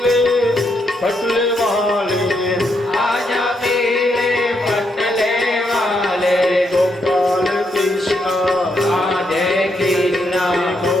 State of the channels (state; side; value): normal; both; correlation 0.78